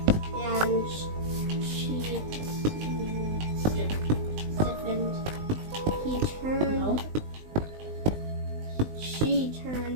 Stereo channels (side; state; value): left; late; 19 ms